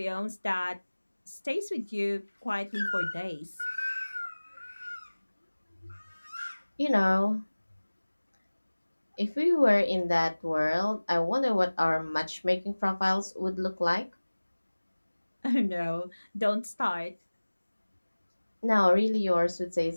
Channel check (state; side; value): inverted; both; correlation -1.00